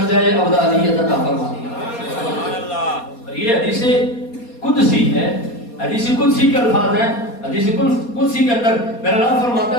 ابدالیت عطا فرما دیا۔ اور یہ حدیث قدسی ہے، حدیث قدسی کے الفاظ ہیں، حدیث قدسی کے اندر میرا رب فرماتا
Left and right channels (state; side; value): late; right; 4.2 ms